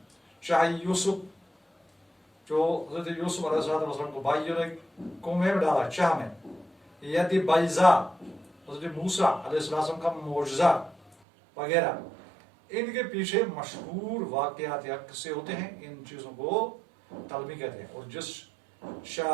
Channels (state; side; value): drops out; left; at 11.2 s